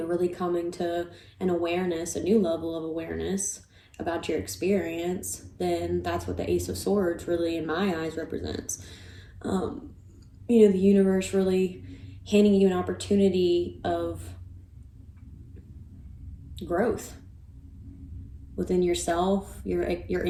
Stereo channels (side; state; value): both; identical; correlation 1.00